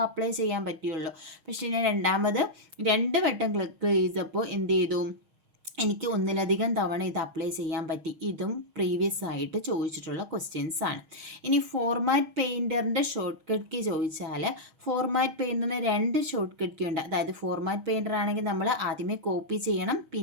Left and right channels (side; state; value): left; late; 6.3 ms